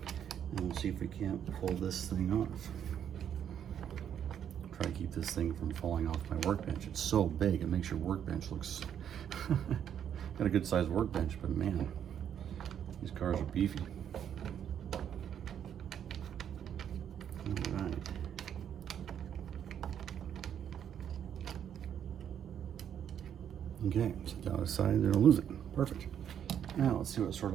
and we'll see if we can't pull this thing off. Try to keep this thing from falling off my workbench. It's so big, it makes your workbench looks got a good sized workbench, but man, these cars are beefy. All right. Okay, set that aside, they don't lose it. Perfect. Now let's see what sort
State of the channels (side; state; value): left; quieter; 9.1 dB